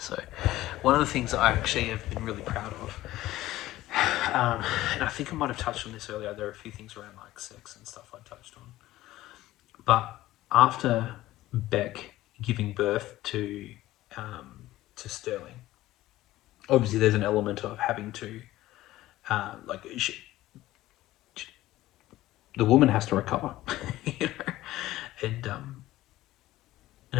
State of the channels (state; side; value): quieter; right; 16.0 dB